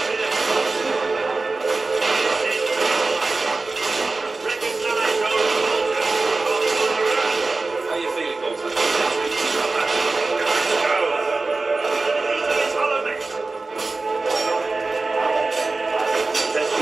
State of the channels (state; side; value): quieter; left; 3.6 dB